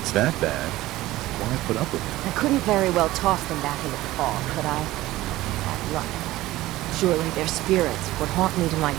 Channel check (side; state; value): left; quieter; 16.9 dB